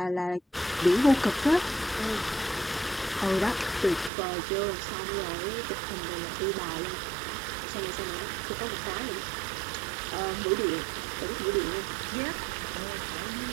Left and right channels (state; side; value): drops out; left; at 4.1 s